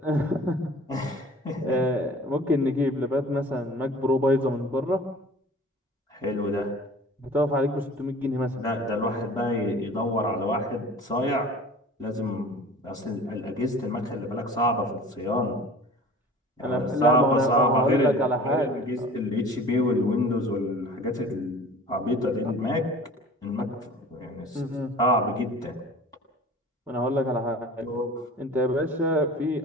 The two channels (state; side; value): normal; both; correlation 0.43